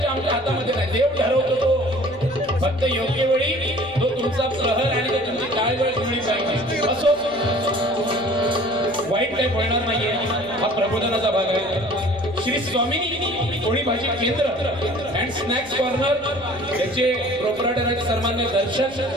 आमच्या हातामध्ये नाही. देव ठरवतो तो. फक्त योग्य वेळी तो तुमचा प्रहर आणि तो तुमची काय वेळ जुळली पाहिजे. असो वाईट काही होणार नाहीये. हा प्रबोधनाचा भाग आहे. श्री स्वामिनी पोळी भाजी केंद्र अँड स्नॅक्स कॉर्नर याचे प्रोपरायटर आहेत सन्मान्य दर्शन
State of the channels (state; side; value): noise; left; hum, 26 dB below the sound